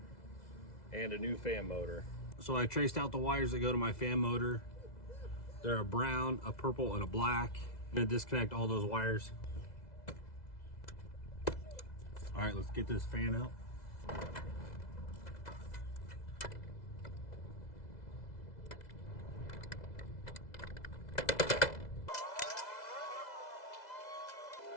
and a new fan motor. So I traced out the wires that go to my fan motor. They're a brown, a purple, and a black. I'm gonna disconnect all those wires. All right, let's get this fan out.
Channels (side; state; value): right; late; 2.0 ms